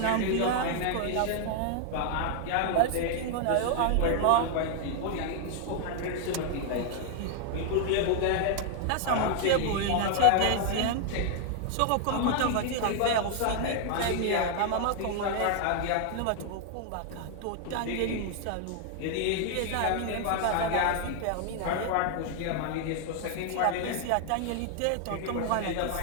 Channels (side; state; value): both; different; correlation 0.00